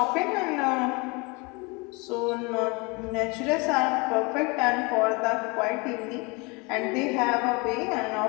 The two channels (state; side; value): quieter; right; 28.2 dB